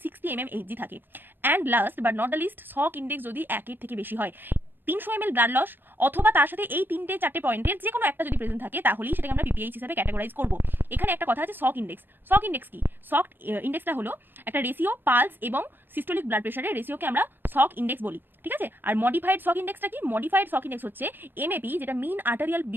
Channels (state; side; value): late; left; 0.097 ms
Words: 60 mmHg থাকে। And last but not the least, shock index যদি 1 থেকে বেশি হয়। 300 ml ব্লাড লস অথবা তার সাথে এই 3-4 পয়েন্টের যে কোনো একটা যদি প্রেজেন্ট থাকে, তাহলেই সেটাকে আমরা পিপিএইচ হিসেবে ক্যাটাগরাইজ করব। এখানে একটা কথা আছে, সক ইন্ডেক্স। সক ইন্ডেক্স কি? সক ইন্ডেক্সটা হলো একটা রেশিও, পালস এবং সিস্টোলিক ব্লাড প্রেশারের রেশিওকে আমরা সক ইন্ডেক্স বলি, ঠিক আছে? আর মডিফাইড সক ইন্ডেক্সটা কি? মডিফাইড সক ইন্ডেক্স হচ্ছে এমএপি, যেটা mean arterial